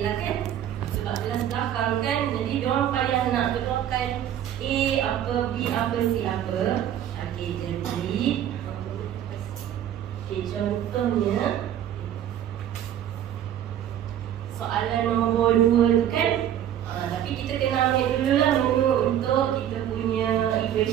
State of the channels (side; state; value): left; quieter; 10.7 dB